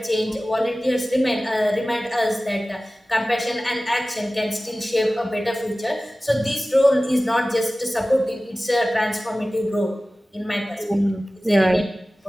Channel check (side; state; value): both; normal; correlation 0.97